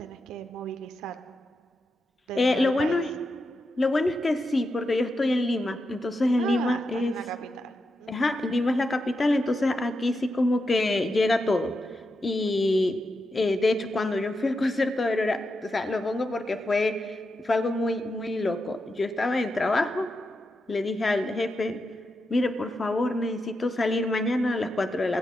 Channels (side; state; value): both; normal; correlation 0.87